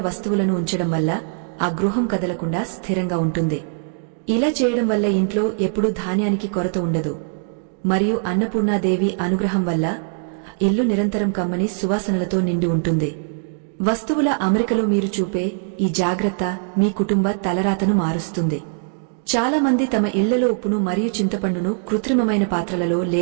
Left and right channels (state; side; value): silent; left; digital silence